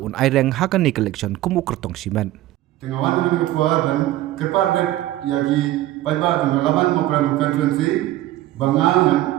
un aireng hakani collection kumu kertong simen tengawan dengan ketua dan kerpar yagi paiba dengan lawan program constituency bangang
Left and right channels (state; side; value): quieter; left; 15.2 dB